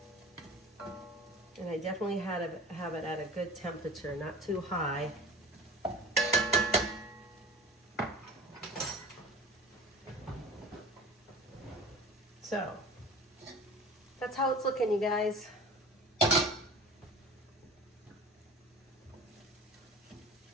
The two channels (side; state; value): both; normal; correlation 0.38